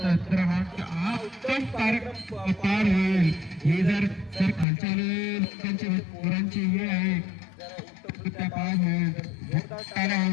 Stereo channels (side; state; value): right; drops out; at 4.7 s